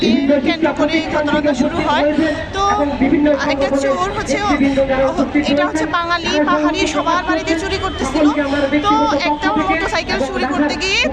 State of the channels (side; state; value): both; identical; correlation 1.00